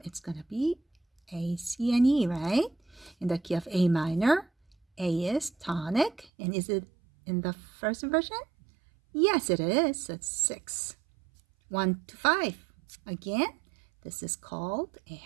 it's going to be A, C, and E, right? In the key of A minor, A is tonic. And is it in the first inversion? Yes, it is. So it's 6. 1 to 5. Again, this is called a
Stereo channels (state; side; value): drops out; left; at 6.3 s